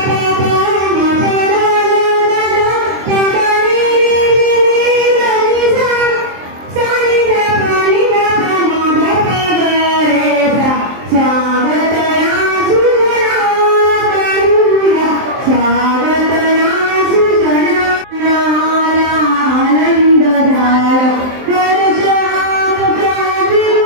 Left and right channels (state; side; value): late; left; 23 ms